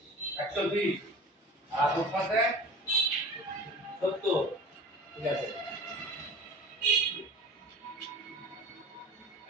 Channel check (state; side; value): normal; both; correlation 0.39